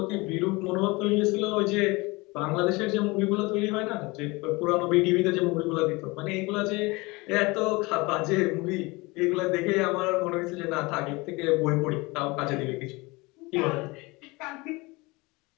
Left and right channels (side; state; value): right; quieter; 24.2 dB